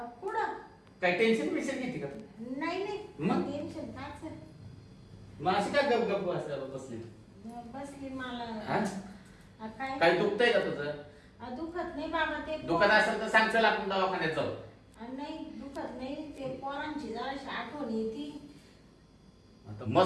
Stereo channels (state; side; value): identical; both; correlation 1.00